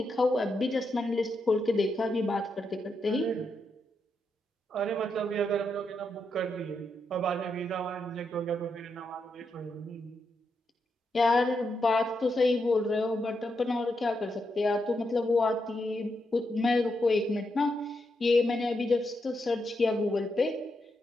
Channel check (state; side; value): normal; both; correlation 0.83